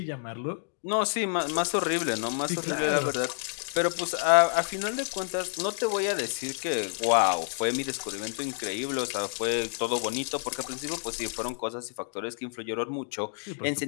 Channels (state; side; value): silent; right; 59 dB below the other